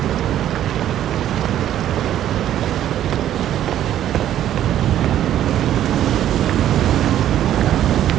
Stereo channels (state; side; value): quieter; left; 11.6 dB